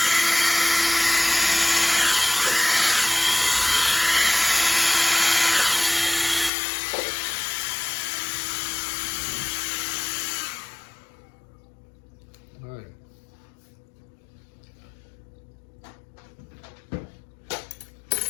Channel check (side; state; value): right; drops out; at 6.5 s